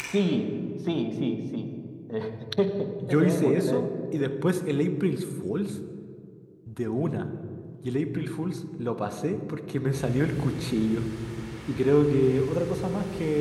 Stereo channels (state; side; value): identical; both; correlation 1.00